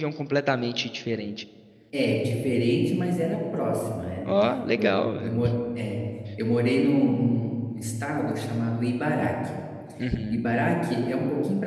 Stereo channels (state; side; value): identical; both; correlation 1.00